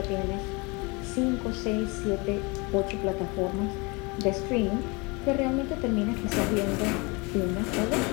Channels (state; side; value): quieter; right; 28.0 dB